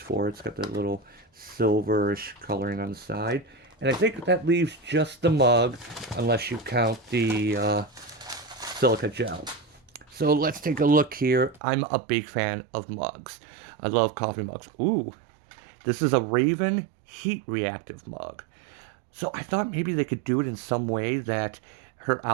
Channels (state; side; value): drops out; left; at 11.6 s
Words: it. It's got that little silverish coloring on the side. And I think that leaves just the mug, unless you count the silica gel. So let's take a look here. I'm a big fan of mugs. I love coffee mugs. Ooh, this is a Raven heat reactive mug. So I thought maybe they could do it in some way that her